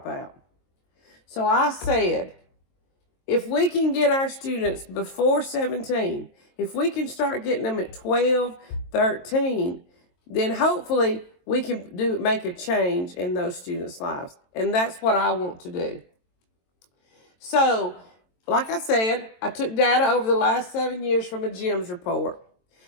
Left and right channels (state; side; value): late; right; 22 ms